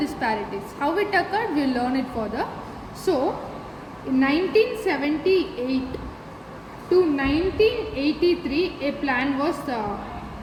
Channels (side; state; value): both; identical; correlation 1.00